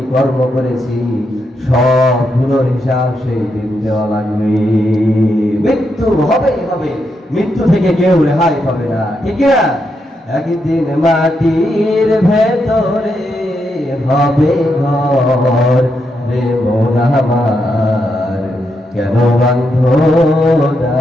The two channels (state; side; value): normal; both; correlation 0.82